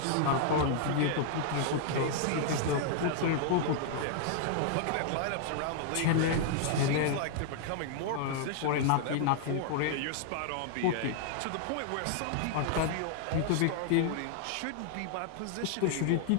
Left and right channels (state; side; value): different; both; correlation -0.01